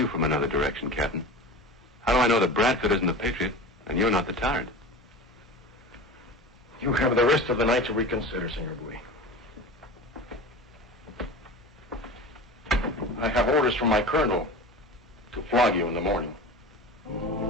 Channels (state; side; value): normal; both; correlation 0.32